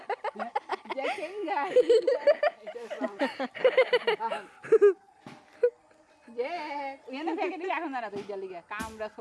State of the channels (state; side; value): identical; both; correlation 1.00